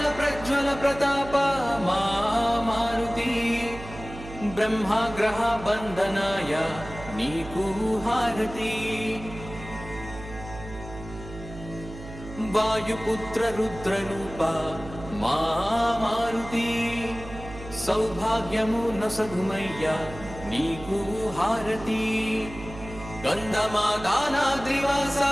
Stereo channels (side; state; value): right; noise; hum, 13 dB below the sound